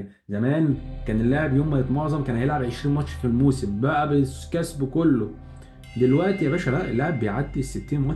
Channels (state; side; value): identical; both; correlation 1.00